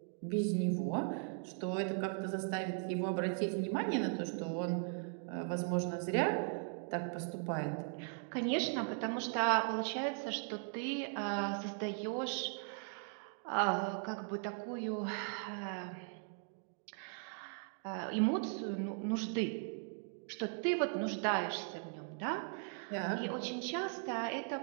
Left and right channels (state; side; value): silent; left; 52 dB below the other